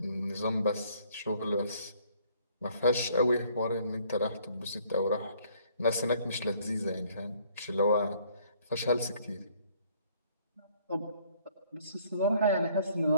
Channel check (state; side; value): inverted; both; correlation -0.61